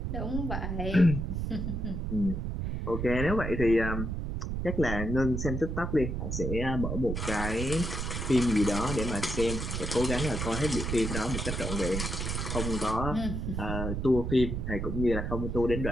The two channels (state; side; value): noise; right; rumble, 2 dB below the sound